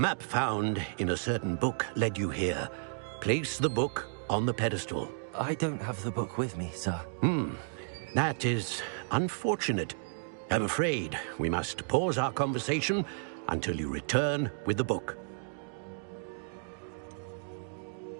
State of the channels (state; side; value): silent; left; digital silence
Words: found in a certain book led you here. Place the book on the pedestal. I don't have the book with me, sir. That is unfortunate. I'm afraid we must pause our conversation until you return with the book.